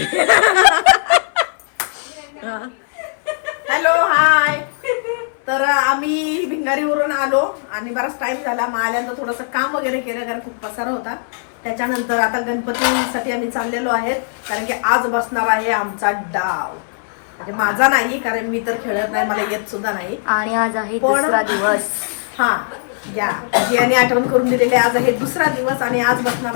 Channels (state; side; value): silent; right; 59 dB below the other